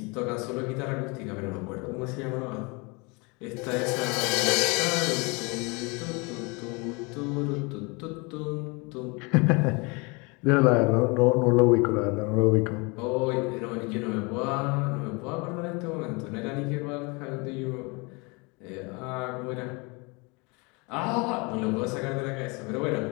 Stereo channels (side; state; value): right; quieter; 28.7 dB